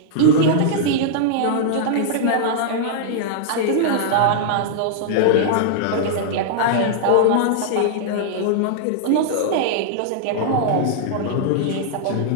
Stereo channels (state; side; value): different; both; correlation -0.01